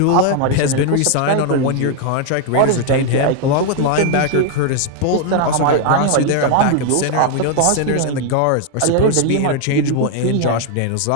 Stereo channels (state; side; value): different; both; correlation 0.01